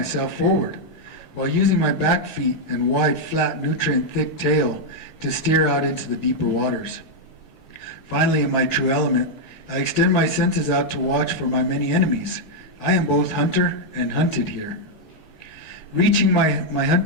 forward, while using my back feet and wide, flat, nutrient-thick tail to steer out into the deeper waters. Finally, in my true element, I extend my senses out to watch for my many enemies. I am both hunter and hunted here. Reaching my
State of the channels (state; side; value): normal; both; correlation -0.01